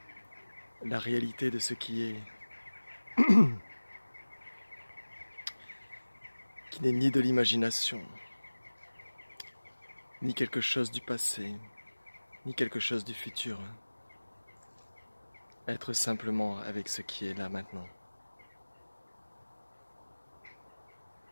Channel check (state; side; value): inverted; both; correlation -1.00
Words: la réalité de ce qui est, qui n'est ni de l'imagination, ni quelque chose du passé, ni quelque chose du futur. Être simplement avec ce qui est là maintenant.